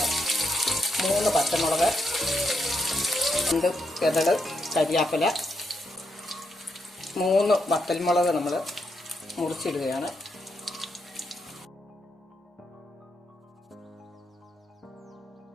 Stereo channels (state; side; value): normal; both; correlation 0.81